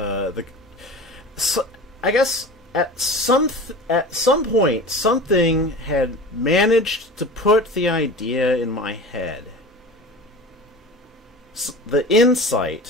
So I guess at some point something had managed to put the idea in my head. The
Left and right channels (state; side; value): normal; both; correlation 0.35